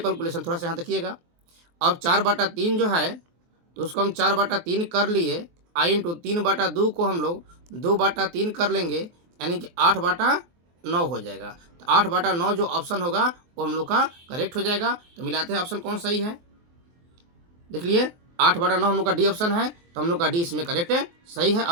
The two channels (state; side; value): late; left; 23 ms